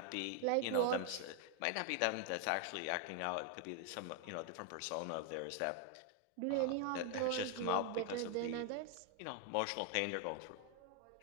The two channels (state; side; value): different; both; correlation 0.00